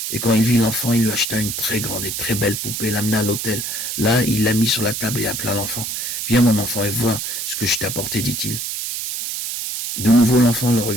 Et quand il vit l'enfant, il lui acheta une très grande et très belle poupée, l'amena à l'hôtel. Là, il la mit sur la table et appela l'enfant. « Viens mon enfant et vois ce que je t'ai apporté, dit-il. » De nouveau, l'enfant le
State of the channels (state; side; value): noise; right; hiss, 4 dB below the sound